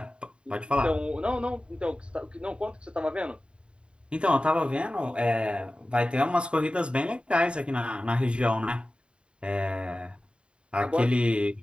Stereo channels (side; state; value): left; late; 0.054 ms